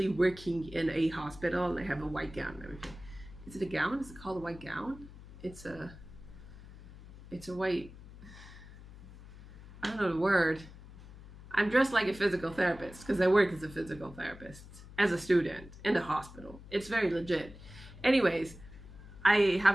working in a hospital, and I have a white gown and everything. Is it a gown? Is it called a white gown? It's a white, know the word. I'm dressed like a physical therapist because I work as a physical therapist as a student in the hospital. It's very legit. Anyways, I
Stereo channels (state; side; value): noise; left; hum, 17 dB below the sound